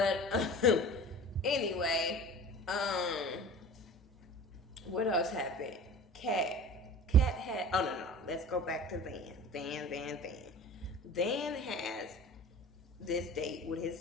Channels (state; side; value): normal; both; correlation 0.39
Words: anyway, what else happened? Cat had, oh no, let's go back to Van. Van has this date with